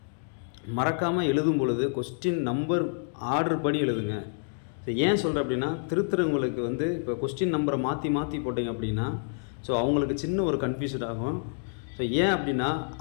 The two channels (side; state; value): right; silent; digital silence